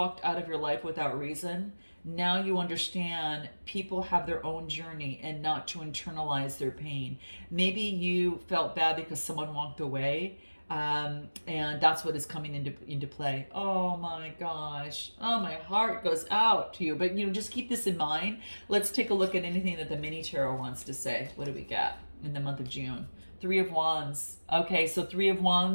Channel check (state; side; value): inverted; both; correlation -1.00